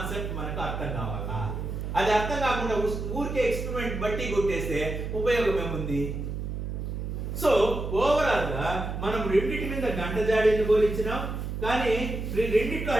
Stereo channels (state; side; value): noise; right; hum, 5 dB below the sound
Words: మనకు అర్థం కావాలా. అది అర్థం కాకుండా ఊరికే ఎక్స్పెరిమెంట్ బట్టి కొట్టేస్తే ఉపయోగం ఏముంది? సో ఓవరాల్ గా మనం రెండింటి మీద గంట జాడీని పోలిచ్చినాం, కానీ రెండిట్లో